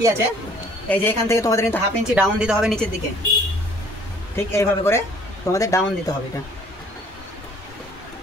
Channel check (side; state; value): both; normal; correlation 0.56